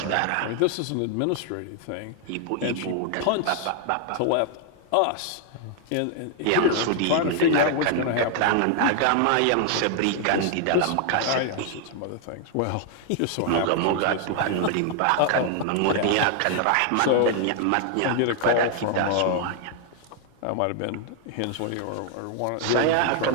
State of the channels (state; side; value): different; both; correlation 0.00